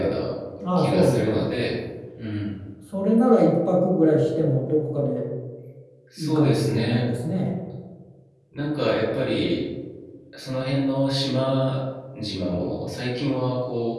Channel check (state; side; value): identical; both; correlation 1.00